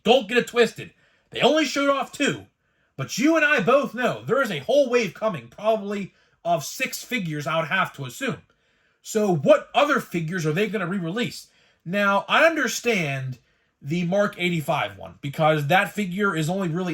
Don't get it twisted. They only showed off two. But you and I both know there is a whole wave coming, probably of 6 figures, I would have to assume. So what other figures are they going to re-release? Now, I understand the Mark 85 one, because that figure is only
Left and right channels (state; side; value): identical; both; correlation 1.00